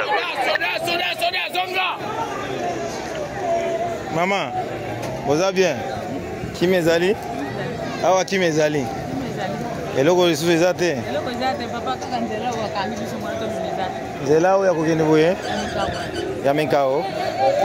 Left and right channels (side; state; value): both; identical; correlation 1.00